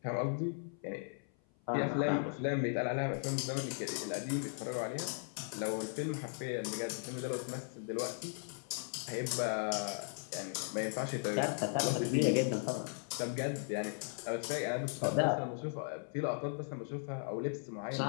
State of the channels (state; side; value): silent; right; 53 dB below the other